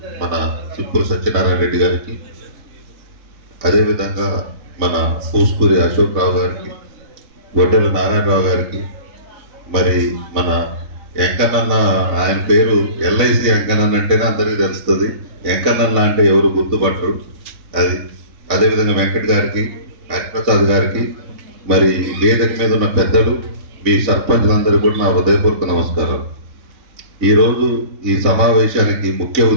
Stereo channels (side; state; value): left; late; 4.0 ms